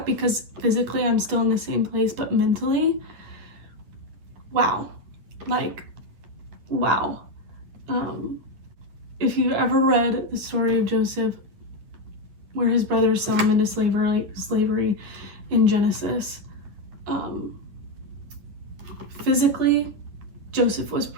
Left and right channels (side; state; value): left; late; 9.9 ms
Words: because physically I'm still in the same place, but mentally, wow. If you've ever read the story of Joseph, where his brothers sell him into slavery in Genesis, physically, Joseph was